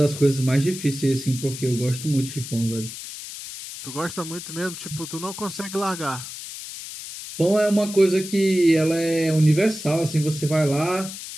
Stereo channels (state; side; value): noise; left; hiss, 11 dB below the sound